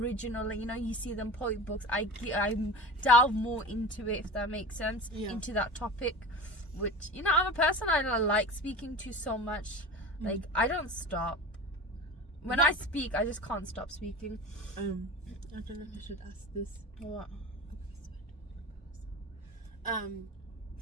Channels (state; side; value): normal; both; correlation 0.33